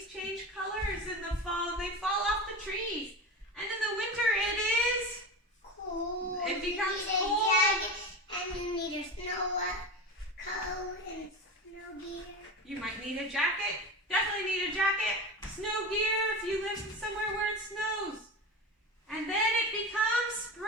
change colors in the fall. They fall off the trees. And in the winter, it is cool. It becomes you need cold. a jacket, and you need a snow coat and snow gear. You might need a jacket. Definitely need a jacket. Snow gear if you live somewhere where it snows. And then it becomes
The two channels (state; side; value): normal; both; correlation 0.25